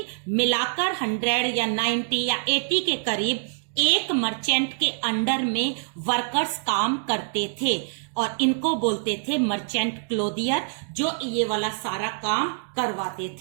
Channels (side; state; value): left; silent; digital silence